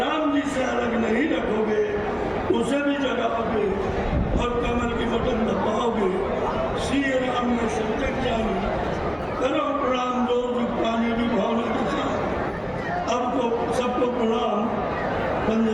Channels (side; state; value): both; identical; correlation 1.00